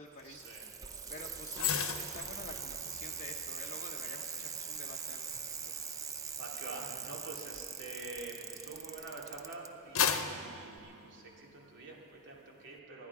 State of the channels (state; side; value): normal; both; correlation -0.01